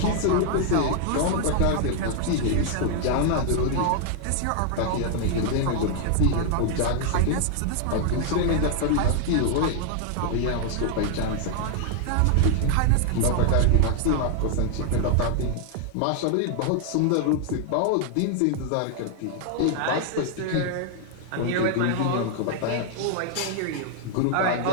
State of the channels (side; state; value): both; different; correlation 0.00